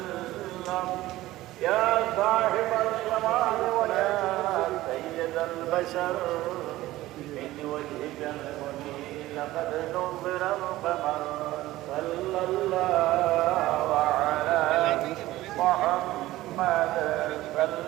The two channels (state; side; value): quieter; left; 16.6 dB